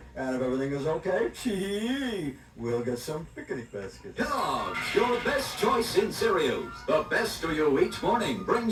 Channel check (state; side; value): identical; both; correlation 1.00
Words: And if everything is okay, we'll get some picnic baskets. Dogs, your best choice in cereals. The best of you each morning